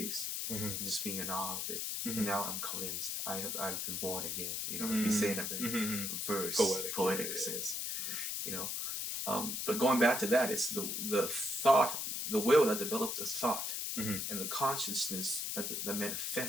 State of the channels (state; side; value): noise; left; hiss, 2 dB below the sound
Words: and just being in awe of it. And now I'm convinced I've been born again. You know, if you say in a very poetic sense, you know. But going back to that, it's the thought, the will that developed the thought, and the consciousness that